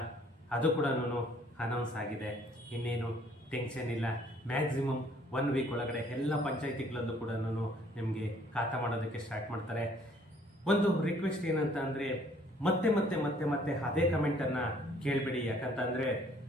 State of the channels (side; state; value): both; normal; correlation 0.60